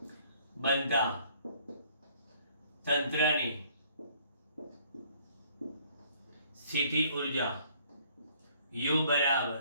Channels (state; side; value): inverted; both; correlation -0.60